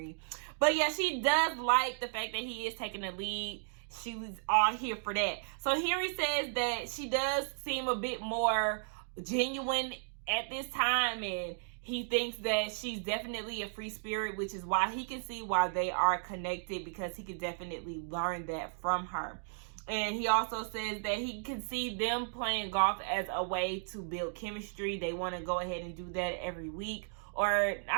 But yeah, she does like the fact that he is taking the lead. She was all here for that. So Henry says that she does seem a bit more genuine at this time, and he thinks that she's definitely a free spirit, which is why he can see why they are connected, because he can definitely learn that from her. And he also says that he can see them playing golf as a way to build chemistry. They want to go ahead and do that every week. Or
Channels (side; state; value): left; silent; digital silence